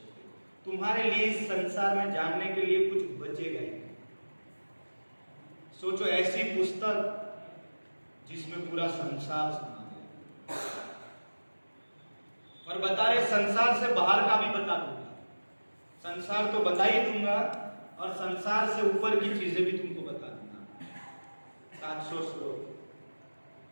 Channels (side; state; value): both; inverted; correlation -1.00